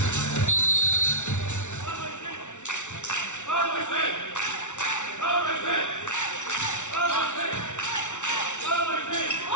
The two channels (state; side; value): late; right; 0.84 ms